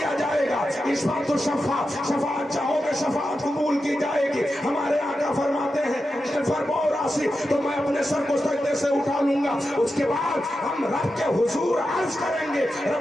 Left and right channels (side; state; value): both; normal; correlation 0.90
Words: जाएगा। इस बात तो शफाअत चाहोगे शफाअत कबूल की जाएगी। हमारे आका फरमाते हैं राशि तो मैं अपने सर को सजदे से उठा लूंगा। उसके बाद हम रब के हुजूर अर्ज करेंगे